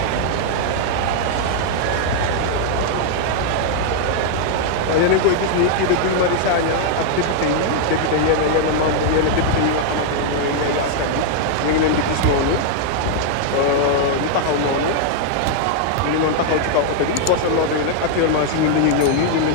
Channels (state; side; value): different; both; correlation 0.00